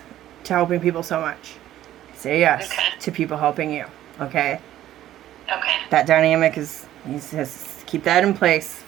to helping people so much. Say yes to people helping you. Okay? Okay. That dynamic is, you just keep that in place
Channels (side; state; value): left; quieter; 13.0 dB